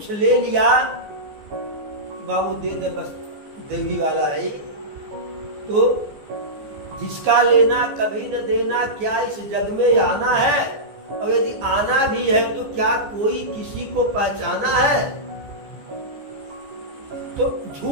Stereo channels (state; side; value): late; left; 14 ms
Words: ले लिया, बाबू दे दे बस देवी वाला है, तो जिसका लेना कभी न देना, क्या इस जग में आना है? और यदि आना भी है तो क्या कोई किसी को पहचाना है? तो